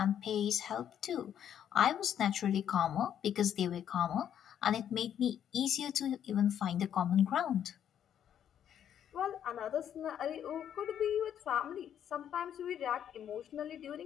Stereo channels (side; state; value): right; quieter; 9.6 dB